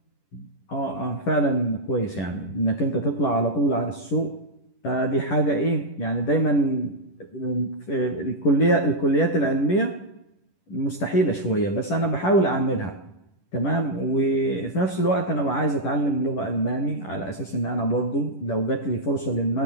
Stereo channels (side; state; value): right; late; 11 ms